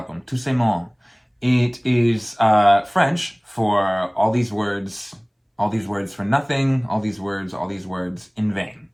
Tout c'est mon. It is French for all these words for nothing, all these words in vain.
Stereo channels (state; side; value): identical; both; correlation 1.00